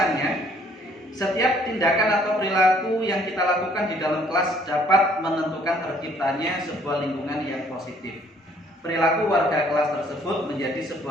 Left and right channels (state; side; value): normal; both; correlation 0.62